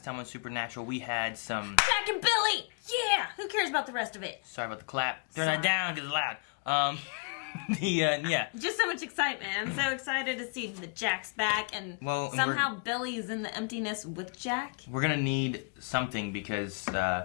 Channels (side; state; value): right; quieter; 37.2 dB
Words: time on Supernatural, we had some... Jack and Billy! Yeah! Who cares about the rest of it? Sorry about the clap. Turn that down because it's loud. Yeah. Just so much excitement. I'm so excited to see that Jack's back and somehow Billy's in the emptiness with Jack. We're going to need something because